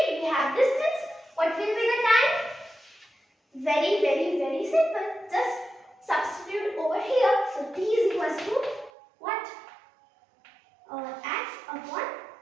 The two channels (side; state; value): left; drops out; at 8.9 s